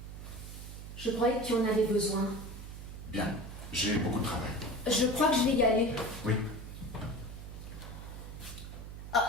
je croyais que tu en avais besoin. Bien, j'ai beaucoup de travail. Je crois que je vais y aller. Oui.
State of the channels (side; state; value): right; noise; hum, 10 dB below the sound